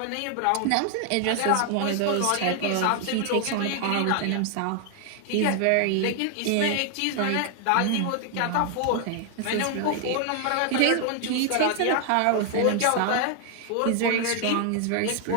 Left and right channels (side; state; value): both; different; correlation 0.00